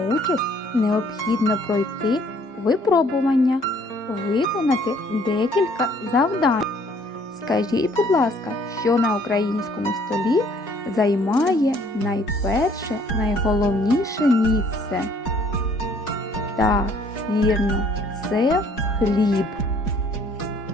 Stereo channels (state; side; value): normal; both; correlation 0.60